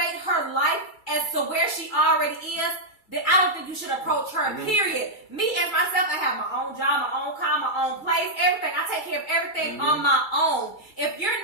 her life as to where she already is, then I don't think you should approach her, period. Me as myself, I have my own job, my own car, my own place, everything. I take care of everything on my own. If you're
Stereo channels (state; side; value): late; right; 2.3 ms